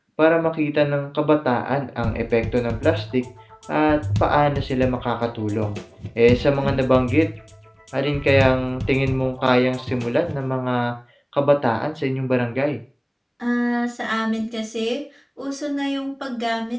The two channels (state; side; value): identical; both; correlation 1.00